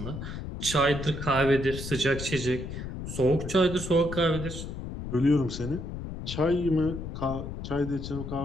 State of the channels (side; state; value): left; noise; rumble, 7 dB below the sound